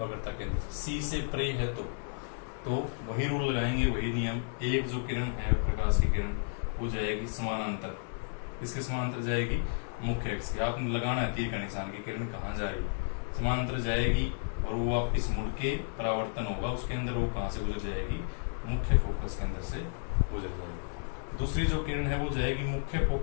केंद्र से, सी से परे है तो वही रूल लगाएंगे, वही नियम। एक जो किरण है प्रकाश की किरण वो जाएगी समानांतर, किसके समानांतर जाएगी, मुख्य अक्ष के। आपने लगाना है तीर का निशान की किरण कहाँ जा रही है, समानांतर जाएगी और वो वापिस मुड़ के परावर्तन होगा उसके अंदर, वो कहाँ से गुजर जाएगी, मुख्य फोकस के अंदर से गुजर जाएगी। दूसरी जो किरण है वो जाएगी मुख्य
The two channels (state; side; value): silent; right; digital silence